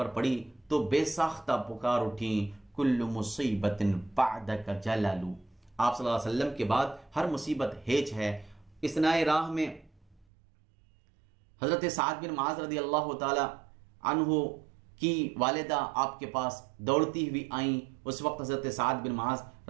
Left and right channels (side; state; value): left; drops out; at 10.2 s